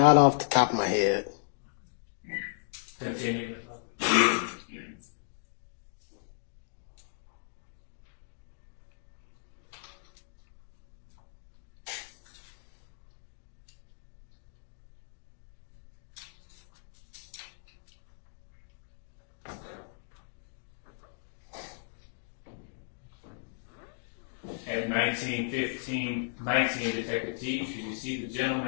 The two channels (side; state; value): right; silent; digital silence